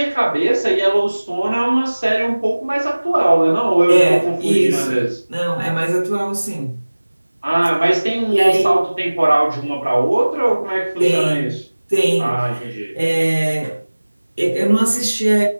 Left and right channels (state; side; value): inverted; both; correlation -1.00